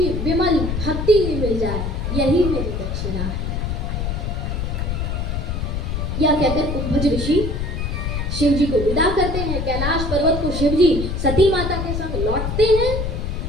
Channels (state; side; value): noise; left; rumble, 2 dB below the sound